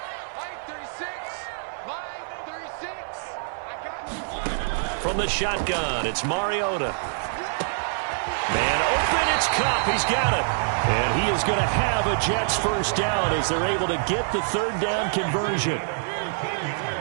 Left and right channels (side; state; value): left; silent; 56 dB below the other